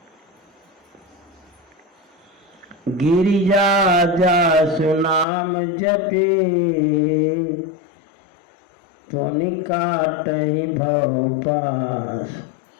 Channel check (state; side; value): drops out; right; at 5.2 s